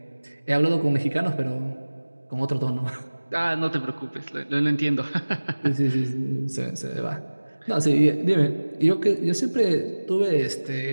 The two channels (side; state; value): both; inverted; correlation -1.00